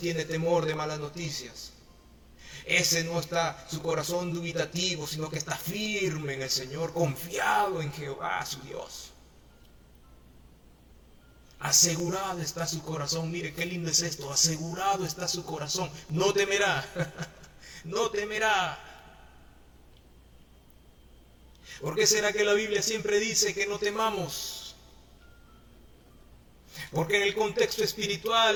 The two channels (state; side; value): identical; both; correlation 1.00